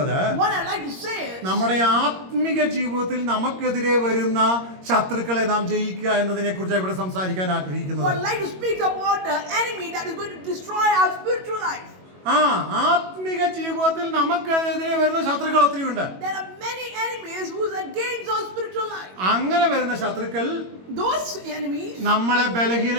What I like to say is, നമ്മുടെ ആത്മിക ജീവിതത്തിൽ നമുക്കെതിരെ വരുന്ന ശത്രുക്കളെ നാം ജയിക്കുക എന്നതിനെ കുറിച്ച് ഇവിടെ സംസാരിക്കാൻ ആഗ്രഹിക്കുന്നത്. What I like to speak about the enemy that is going to destroy our spiritual life. ആത്മിക ജീവിതത്തിൽ നമുക്കെതിരെ വരുന്ന ശത്രുക്കൾ ഒത്തിരിയുണ്ട്. There are many enemies who is against our spiritual life. അങ്ങനെ വരുന്ന ശത്രുക്കൾ Those enemies, നമ്മളെ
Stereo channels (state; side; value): late; left; 21 ms